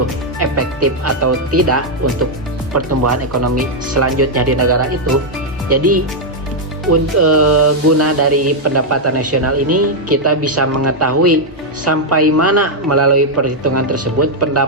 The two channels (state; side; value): normal; both; correlation -0.02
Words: efektif atau tidak untuk pertumbuhan ekonomi selanjutnya di negara itu. Jadi guna dari pendapatan nasional ini, kita bisa mengetahui sampai mana melalui perhitungan tersebut